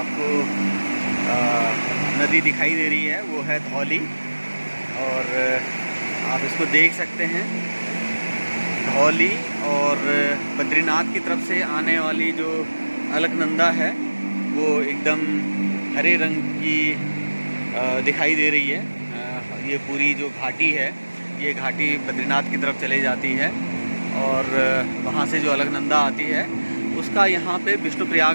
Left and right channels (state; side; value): inverted; both; correlation -1.00